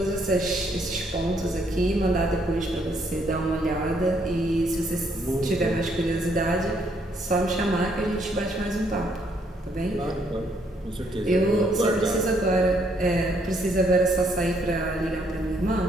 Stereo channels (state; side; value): normal; both; correlation 0.70